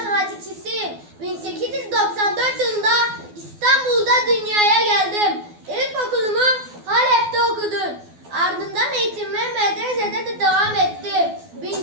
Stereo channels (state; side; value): late; left; 12 ms